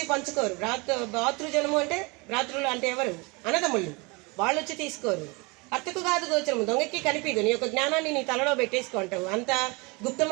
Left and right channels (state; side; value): quieter; left; 27.6 dB